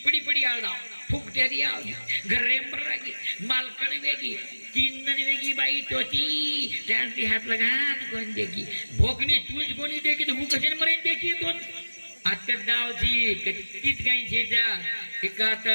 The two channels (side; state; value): both; inverted; correlation -1.00